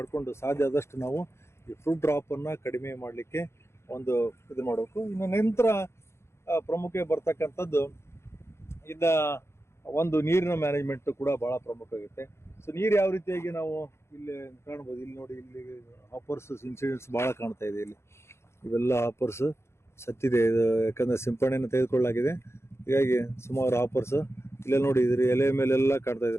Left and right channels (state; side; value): late; right; 0.13 ms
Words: ಸಾಧ್ಯ ಆದಷ್ಟು ನಾವು ಈ ಫ್ರೂಟ್ ಡ್ರಾಪ್ ಅನ್ನ ಕಡಿಮೆ ಮಾಡಲಿಕ್ಕೆ ಇದು ಮಾಡಬೇಕು. ಇನ್ನು ನಂತರ ಪ್ರಮುಖ ಬರ್ತಕ್ಕಂಥದ್ದು ನೀರಿನ ಮ್ಯಾನೇಜ್ಮೆಂಟ್ ಕೂಡ ಬಹಳ ಪ್ರಮುಖ ಆಗುತ್ತೆ. ಸೊ ನೀರು ಯಾವ ರೀತಿಯಾಗಿ ನಾವು ಇಲ್ಲಿ ಕಾಣ್ಬೋದು, ಇಲ್ಲಿ ನೋಡಿ, ಇಲ್ಲಿ ಹಾಪರ್ಸ್ ಇನ್ಸಿಡೆಂಟ್ಸ್ ಬಹಳ ಕಾಣ್ತಾ ಇದೆ. ಇಲ್ಲಿ ಇವೆಲ್ಲ ಹಾಪರ್ಸ್ ಸತ್ತಿದೆ, ಯಾಕಂದ್ರೆ ಸಿಂಪಡಣೆಯನ್ನು ತೆಗೆದುಕೊಳ್ಳಲಾಗಿದೆ. ಹೀಗಾಗಿ ಸುಮಾರು ಹಾಪರ್ಸ್ ಇಲ್ಲೆಲ್ಲ ನೋಡಿ, ಇದ್ರ ಎಲೆ ಮೇಲೆಲ್ಲ ಕಾಣ್ತಾ ಇದೆ